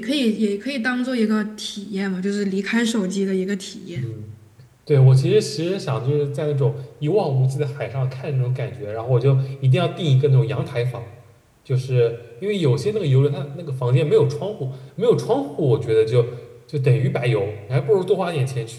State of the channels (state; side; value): identical; both; correlation 1.00